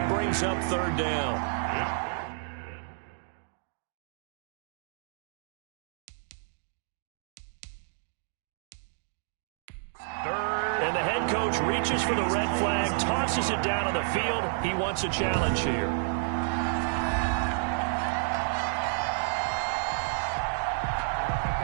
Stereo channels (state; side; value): silent; left; digital silence